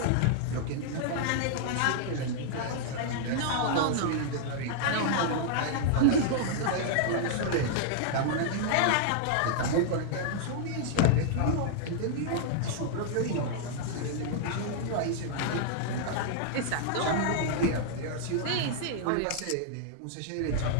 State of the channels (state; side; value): different; both; correlation -0.01